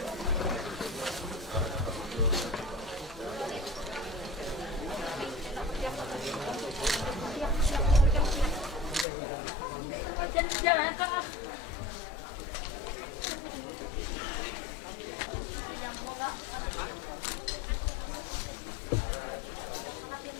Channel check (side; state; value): right; drops out; at 9.1 s